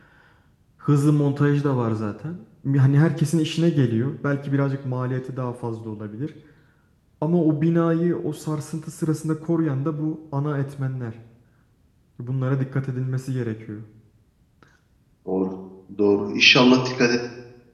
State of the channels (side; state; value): both; identical; correlation 1.00